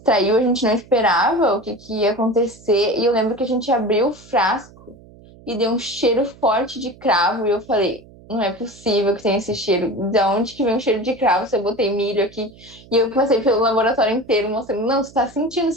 a gente não esperava o que ia acontecer, e eu lembro que a gente abriu o frasco e deu um cheiro forte de cravo, e eu falei, não é possível que tenha esse cheiro. De onde que vem o cheiro de cravo? Se eu botei milho aqui. E eu passei pelo laboratório inteiro mostrando, não, você tá sentindo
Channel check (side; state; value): right; noise; hum, 23 dB below the sound